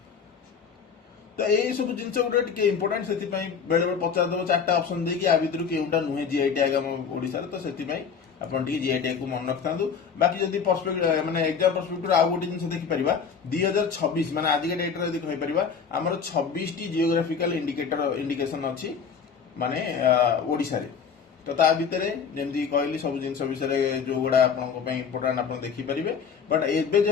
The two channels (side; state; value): right; quieter; 6.4 dB